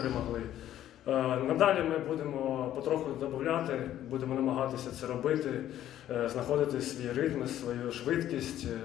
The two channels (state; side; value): quieter; right; 12.1 dB